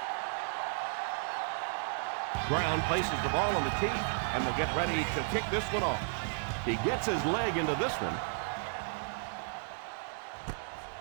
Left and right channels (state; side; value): silent; left; digital silence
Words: Brown places the ball on the tee and will get ready to kick this one off. He gets his leg into this one.